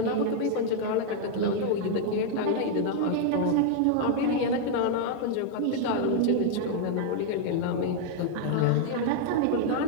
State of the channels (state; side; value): different; both; correlation -0.01